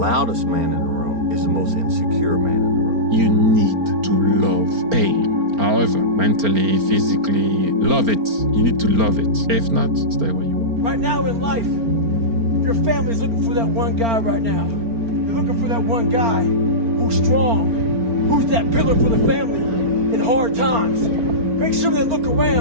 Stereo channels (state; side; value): late; left; 4.4 ms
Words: man in the room is the most insecure man in the room. You need to love pain. However, mentally, physically, love it. You need to love it. If not, stay where you are. Right now in life, your family's looking for that one guy right now. They're looking for that one guy who's strong, who's that pillar for the family. And hard times. Make sure they look